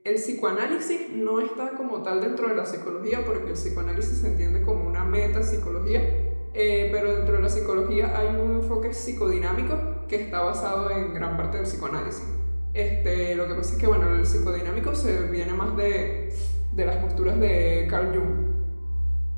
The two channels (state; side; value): inverted; both; correlation -1.00